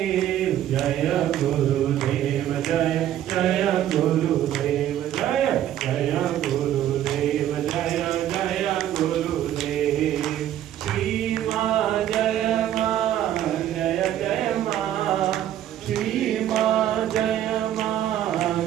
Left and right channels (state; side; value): quieter; left; 11.7 dB